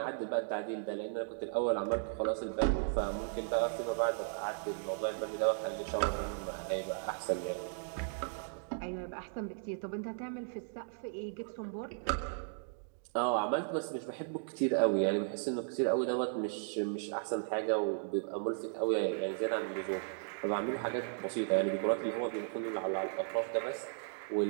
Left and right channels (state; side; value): silent; left; digital silence